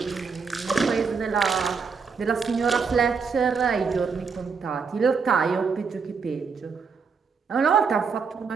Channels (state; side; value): quieter; left; 5.5 dB